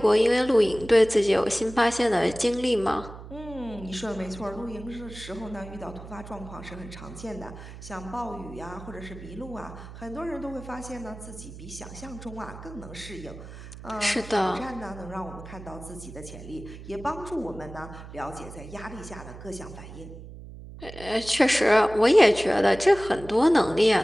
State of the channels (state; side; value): noise; right; hum, 14 dB below the sound